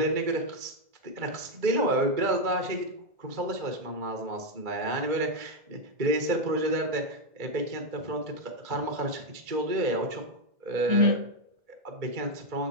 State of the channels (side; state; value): left; late; 2.2 ms